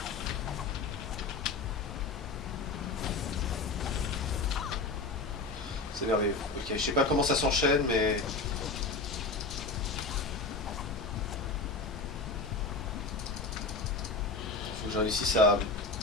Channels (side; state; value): right; quieter; 3.6 dB